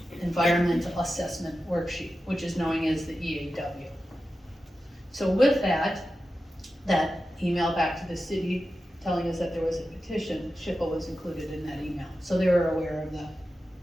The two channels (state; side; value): normal; both; correlation 0.92